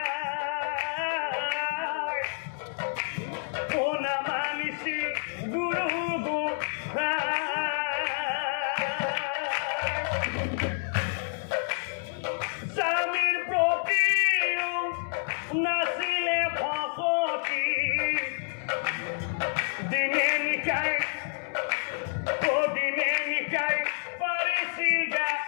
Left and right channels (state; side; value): silent; right; digital silence